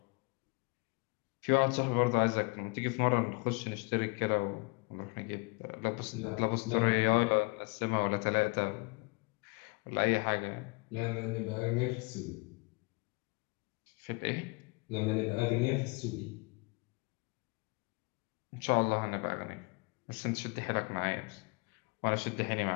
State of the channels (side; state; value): right; quieter; 29.6 dB